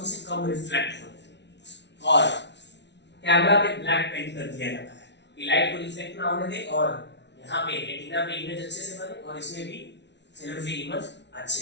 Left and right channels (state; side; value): late; right; 0.51 ms